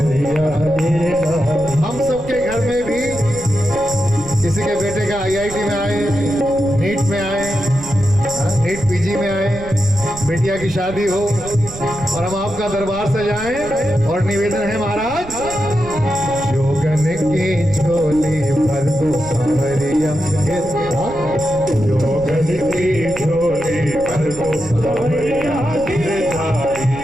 हम सबके घर में भी किसी के बेटे का IIT में आए, नीट में आए, नीट PG में आए, बेटिया की शादी हो और हम आपका दरबार सजाएं और निवेदन है महाराज, जोगन की झोली भर दो सांवरिया, जोगन की झोली भर दो सांवरिया गिरधारी,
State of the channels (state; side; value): noise; right; rumble, 14 dB below the sound